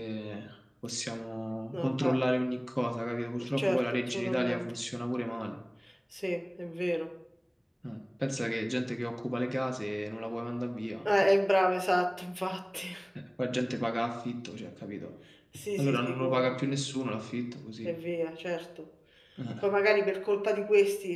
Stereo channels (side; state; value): both; identical; correlation 1.00